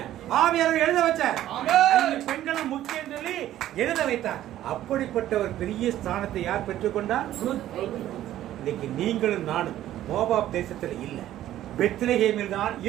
ஆவியானவர் எழுத வச்சார். பெண்களும் முக்கியம் சொல்லி எழுத வைத்தார். அப்படிப்பட்ட ஒரு பெரிய ஸ்தானத்தை யார் பெற்றுக்கொண்டார்? இன்னைக்கு நீங்களும் நானும் மோவாப் தேசத்தில் இல்லை, பெத்லகேமில் தான்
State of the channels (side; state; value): left; quieter; 13.0 dB